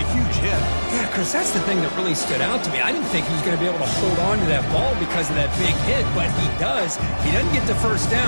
huge hit. Yeah, Chris, that's the thing that really stood out to me. I didn't think he was going to be able to hold on to that ball because of that big hit, but he does. He doesn't get the first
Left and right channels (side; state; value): both; inverted; correlation -1.00